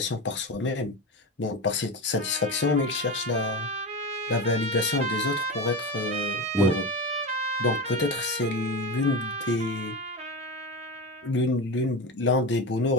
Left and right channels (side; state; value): both; normal; correlation 0.22